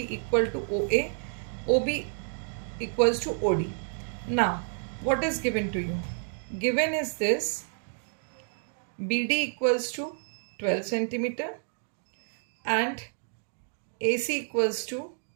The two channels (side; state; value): left; silent; digital silence